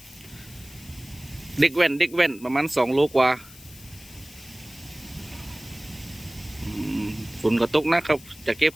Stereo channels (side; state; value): left; noise; hiss, 20 dB below the sound